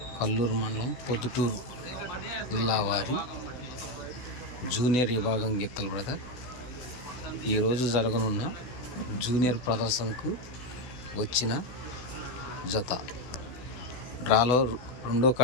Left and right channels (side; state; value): right; late; 16 ms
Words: కల్లూరు మండలం పొద్దుటూరు జిల్లా వారి జూనియర్ విభాగం గిత్తలు బ్రదర్. ఈరోజు జరగనున్న జూనియర్ ప్రదర్శనకు వచ్చిన జత. డ్రాలో రెండో